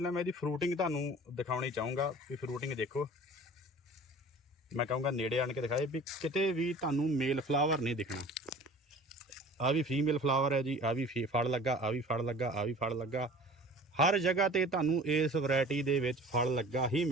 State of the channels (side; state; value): both; normal; correlation 0.44